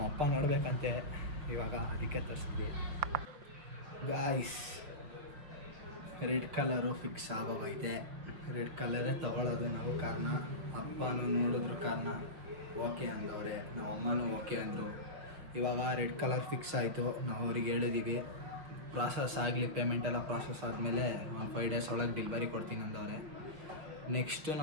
ಅಪ್ಪ ನೋಡ್ಬೇಕಂತೆ ಇವಾಗ, ಅದಕ್ಕೆ ತರಿಸಿದ್ವಿ. ಗಾಯ್ಸ್ ರೆಡ್ ಕಲರು ಫಿಕ್ಸ್ ಆಗೋಗೈತೆ. ರೆಡ್ ಕಲರೇ ತೊಗೊಳೋದು ನಾವು ಕಾರ್ನ. ಅಪ್ಪನೂ ನೋಡಿದ್ರು ಕಾರ್ನ, ಓಕೆ ಅಂದವ್ರೆ, ನಮ್ಮ ಅಮ್ಮನೂ ಓಕೆ ಅಂದರು. ಇವಾಗ ರೆಡ್ ಕಲರ್ ಫಿಕ್ಸ್ ಆಯಿತು. ನಾವು ಅವ್ರಿಗೆ ಹೇಳಿದ್ದೀವಿ ಪ್ರಾಸೆಸ್ ಆಗಲಿ, ಪೇಮೆಂಟೆಲ್ಲ ಪ್ರಾಸೆಸ್ ಆದಮೇಲೆ ಒಂದು 5 ಡೇಸ್ ಒಳಗೆ ಡೆಲಿವರಿ ಕೊಡ್ತೀನಿ ಅಂದವ್ರೆ. ನೆಕ್ಸ್ಟು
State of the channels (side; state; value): left; late; 6.1 ms